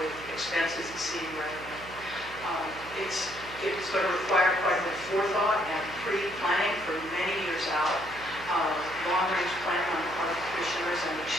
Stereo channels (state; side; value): noise; right; hum, 17 dB below the sound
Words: with expenses exceeding revenue. It's going to require quite a bit of forethought and pre-planning for many years out. Long-range planning on the part of the commissioners and the